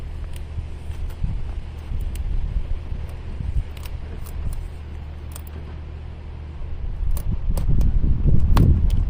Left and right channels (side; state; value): both; identical; correlation 1.00